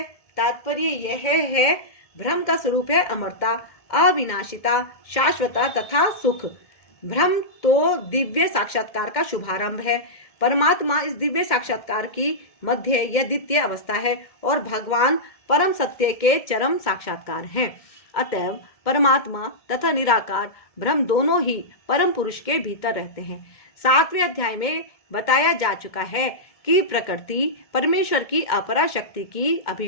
यह है, ब्रह्म का स्वरूप है अमरता, अविनाशिता, शाश्वता तथा सुख। ब्रह्म तो दिव्य साक्षात्कार का शुभारंभ है। परमात्मा इस दिव्य साक्षात्कार की मध्य या द्वितीय अवस्था है और भगवान परम सत्य के चरम साक्षात्कार हैं। अतएव परमात्मा तथा निराकार ब्रह्म दोनों ही परम पुरुष के भीतर रहते हैं। 7वें अध्याय में बताया जा चुका है कि प्रकृति परमेश्वर की अपरा शक्ति की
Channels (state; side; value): late; right; 1.7 ms